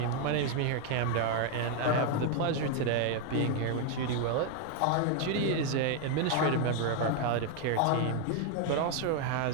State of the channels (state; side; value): different; both; correlation 0.01